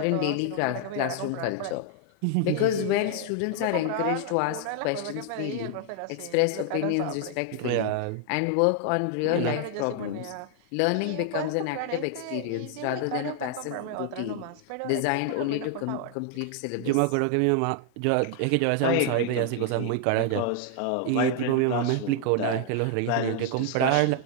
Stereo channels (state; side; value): different; both; correlation 0.00